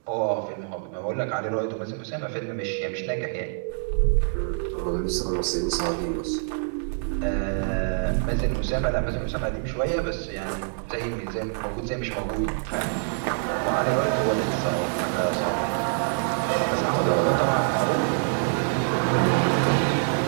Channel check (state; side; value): silent; left; 61 dB below the other